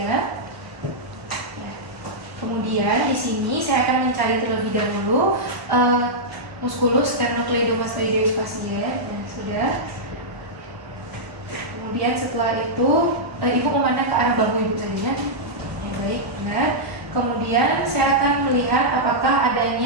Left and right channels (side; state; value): left; late; 1.0 ms